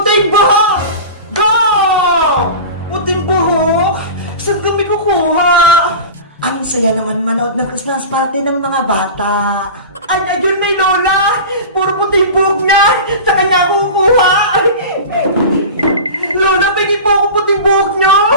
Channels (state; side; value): inverted; both; correlation -0.31